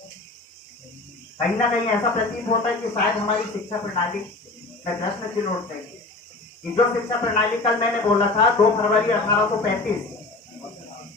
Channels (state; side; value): quieter; right; 3.2 dB